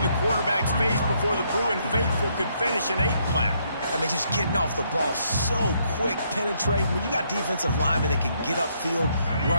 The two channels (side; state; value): both; inverted; correlation -0.72